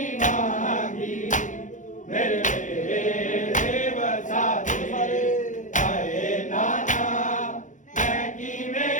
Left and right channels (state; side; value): late; right; 0.37 ms